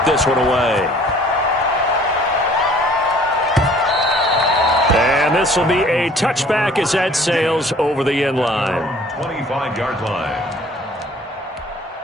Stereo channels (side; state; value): both; normal; correlation 0.53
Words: this one away. And this will be a touchback as that sails over the end line. 25-yard line.